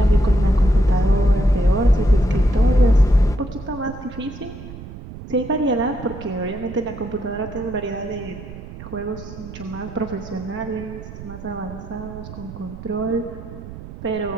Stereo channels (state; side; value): noise; right; rumble, 13 dB below the sound